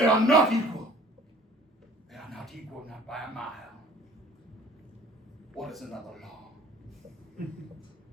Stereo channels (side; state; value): both; normal; correlation 0.51